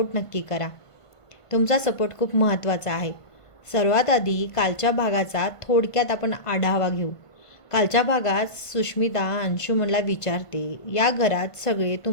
नक्की करा. तुमचा सपोर्ट खूप महत्त्वाचा आहे. सर्वात आधी कालच्या भागाचा थोडक्यात आपण आढावा घेऊ. कालच्या भागात सुष्मिता अंशुमनला विचारते, या घरात सगळे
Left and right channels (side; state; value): right; late; 1.5 ms